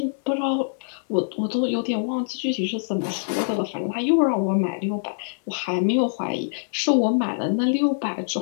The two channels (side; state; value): right; silent; digital silence